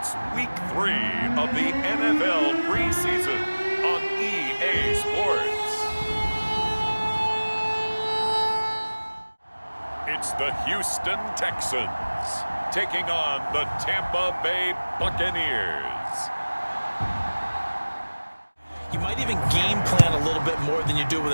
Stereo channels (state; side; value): inverted; both; correlation -1.00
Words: Week 3 of the NFL Preseason on EA Sports. It's the Houston Texans taking on the Tampa Bay Buccaneers. You might even game plan a little bit more than you do with